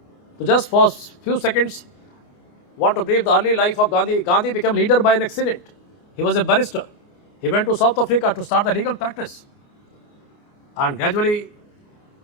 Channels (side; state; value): right; late; 29 ms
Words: So just for few seconds, want to brief the early life of Gandhi. Gandhi became leader by an accident. He was a barrister. He went to South Africa to start the legal practice. And gradually,